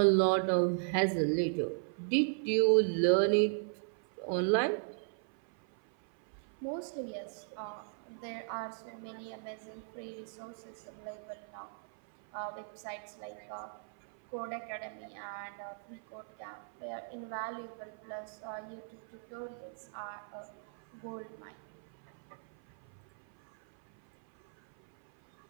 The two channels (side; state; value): left; silent; 53 dB below the other